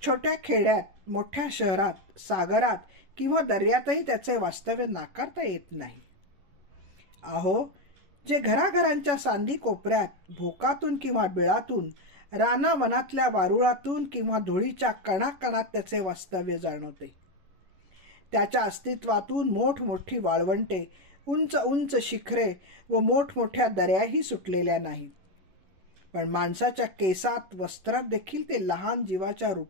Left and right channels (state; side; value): late; left; 11 ms